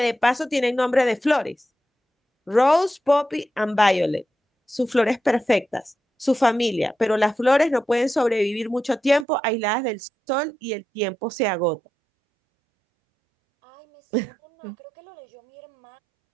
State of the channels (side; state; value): left; drops out; at 9.2 s